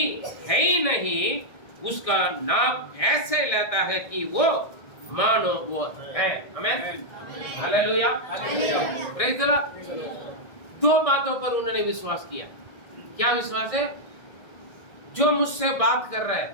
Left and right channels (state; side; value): late; right; 1.6 ms